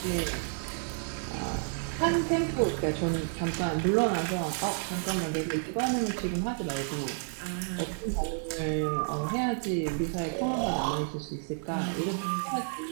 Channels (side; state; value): left; silent; 57 dB below the other